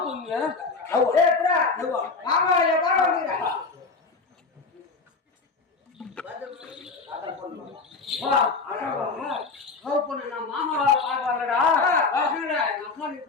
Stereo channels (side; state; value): right; quieter; 4.3 dB